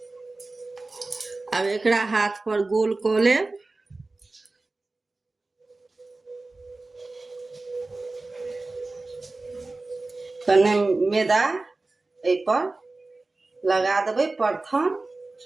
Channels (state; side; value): quieter; left; 3.3 dB